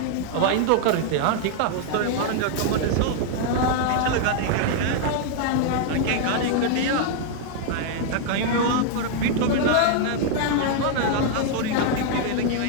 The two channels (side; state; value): both; different; correlation 0.00